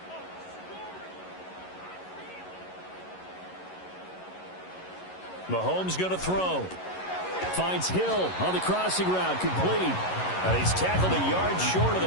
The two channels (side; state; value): right; late; 11 ms